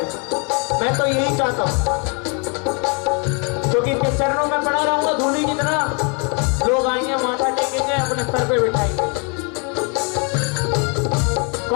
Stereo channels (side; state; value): right; quieter; 35.3 dB